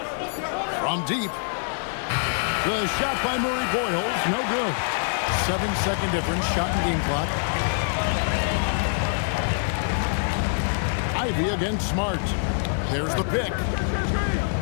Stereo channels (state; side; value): silent; right; digital silence